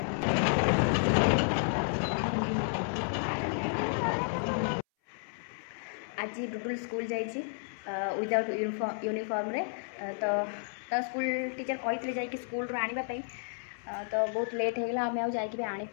आज डुडुल स्कूल जाइए विदाउट यूनिफॉर्म रे तो स्कूल टीचर कहते जाकि स्कूल आने तो बहुत लेट हो गला आम आ जाकि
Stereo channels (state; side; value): silent; right; 57 dB below the other